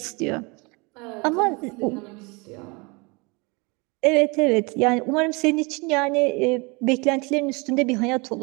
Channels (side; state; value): left; quieter; 28.4 dB